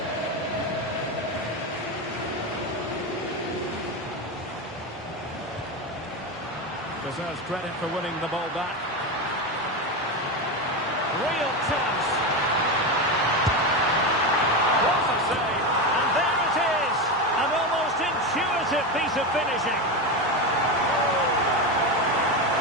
Deserves credit for winning the ball back. Real chance. What a save. And there it is. An almost intuitive piece of finishing.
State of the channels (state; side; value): normal; both; correlation 0.16